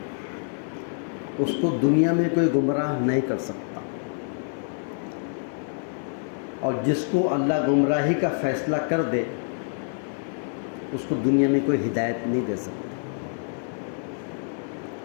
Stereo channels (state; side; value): silent; right; 61 dB below the other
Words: اس کو دنیا میں کوئی گمراہ نہیں کر سکتا، اور جس کو اللہ گمراہی کا فیصلہ کر دے اس کو دنیا میں کوئی ہدایت نہیں دے سکتا.